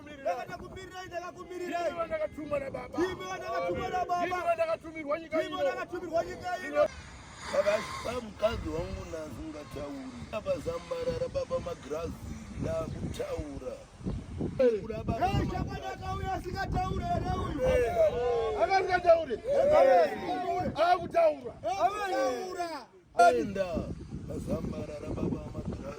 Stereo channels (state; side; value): identical; both; correlation 1.00